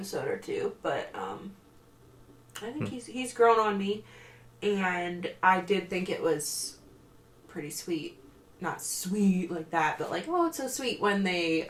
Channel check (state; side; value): identical; both; correlation 1.00